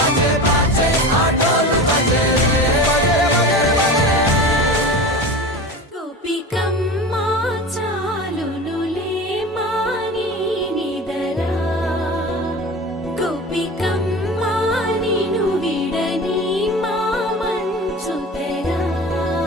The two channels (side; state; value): both; normal; correlation 0.32